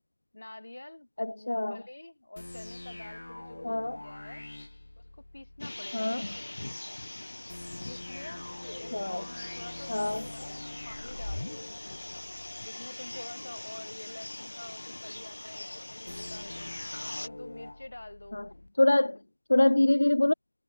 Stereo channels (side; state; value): both; inverted; correlation -1.00